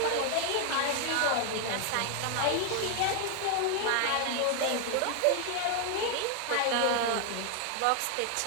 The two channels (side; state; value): both; different; correlation 0.00